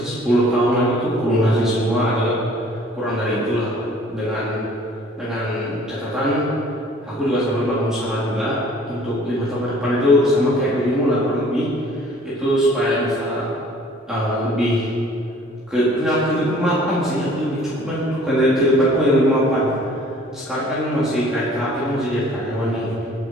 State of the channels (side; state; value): both; normal; correlation 0.53